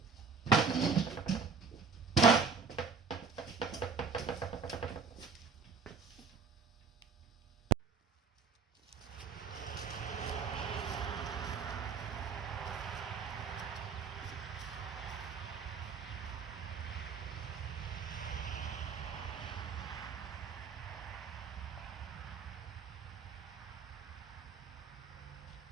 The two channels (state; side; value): quieter; left; 5.3 dB